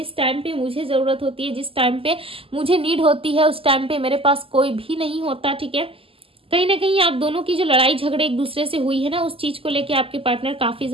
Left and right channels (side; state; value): left; late; 0.26 ms